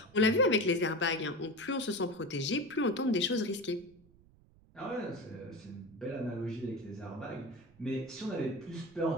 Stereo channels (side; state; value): right; noise; rumble, 27 dB below the sound